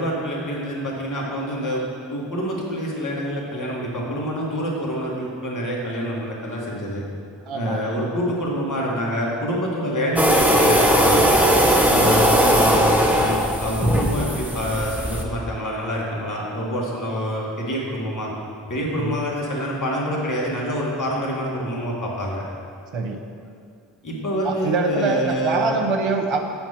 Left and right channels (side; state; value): both; normal; correlation 0.43